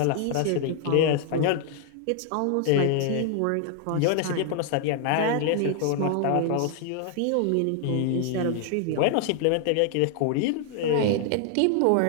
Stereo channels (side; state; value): both; different; correlation 0.00